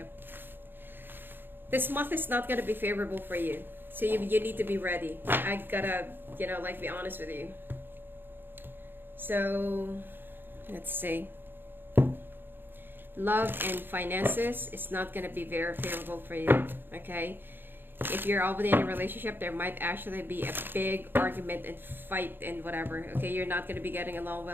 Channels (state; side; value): late; left; 0.098 ms